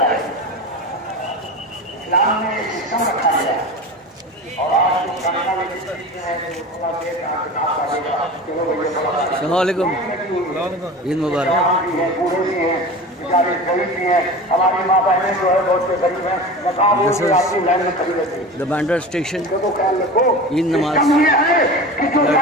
इस्लाम ने एक सिस्टम रखा है और आज जो करना भी अस्सलामुअलैकुम, ईद मुबारक। बूढ़े भी हैं, बेचारे गरीब भी हैं, हमारी माँ बहनें जो है बहुत से गरीब हैं, This is the Bandra station, Eid Namaz,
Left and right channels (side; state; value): both; normal; correlation 0.32